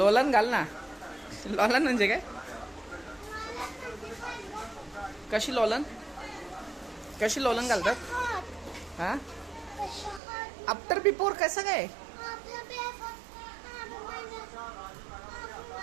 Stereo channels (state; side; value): drops out; left; at 10.2 s